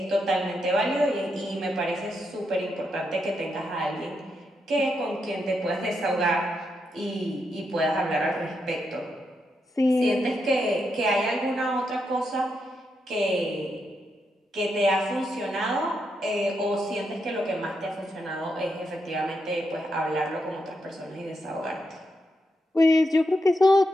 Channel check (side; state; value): both; normal; correlation 0.83